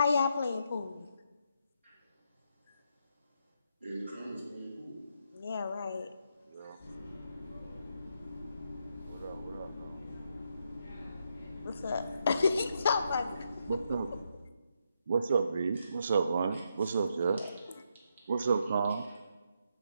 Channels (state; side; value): inverted; both; correlation -0.80